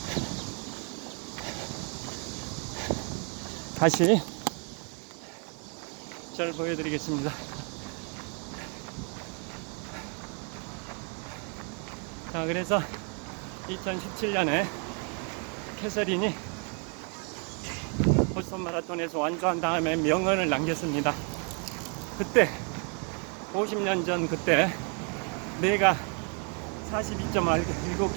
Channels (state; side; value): quieter; left; 38.6 dB